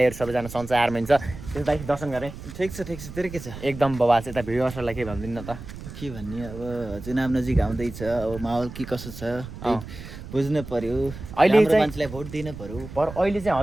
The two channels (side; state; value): right; noise; rumble, 12 dB below the sound